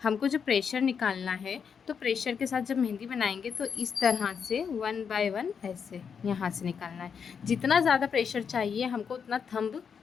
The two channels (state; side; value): quieter; right; 6.7 dB